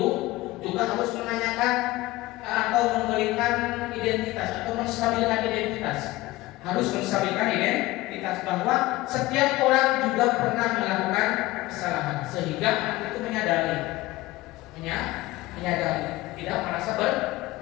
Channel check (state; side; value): quieter; right; 18.9 dB